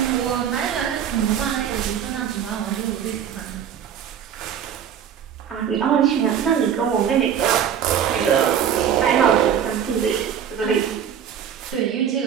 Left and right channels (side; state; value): left; quieter; 8.7 dB